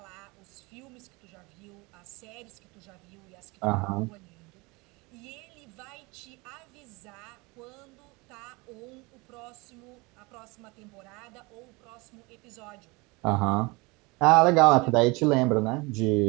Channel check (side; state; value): left; quieter; 25.6 dB